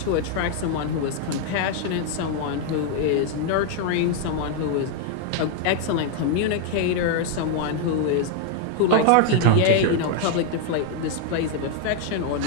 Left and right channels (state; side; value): different; both; correlation 0.00